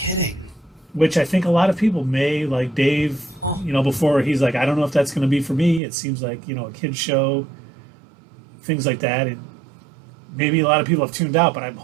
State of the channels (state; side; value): drops out; left; at 5.8 s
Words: Which I think a lot of people may, like Dave, before he's like, I don't know if that's going to be for me. It seems like, a kid's show, things like that. And maybe a lot of people have tuned out, but I'm